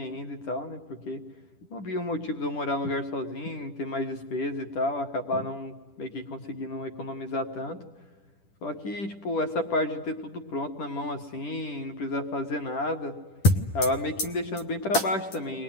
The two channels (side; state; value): right; late; 10 ms